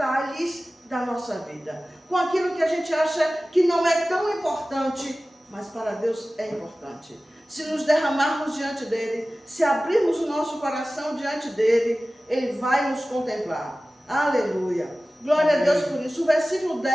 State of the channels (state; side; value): normal; both; correlation 0.96